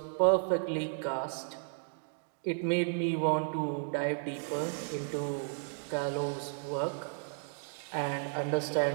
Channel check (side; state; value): left; silent; digital silence